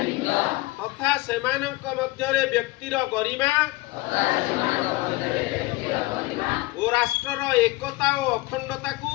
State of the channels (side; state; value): right; quieter; 20.6 dB